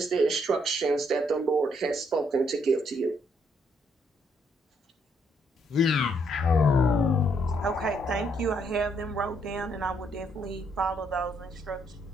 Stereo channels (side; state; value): both; normal; correlation 0.72